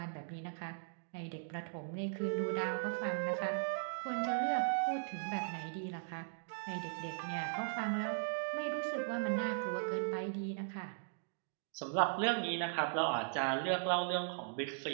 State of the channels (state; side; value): silent; left; digital silence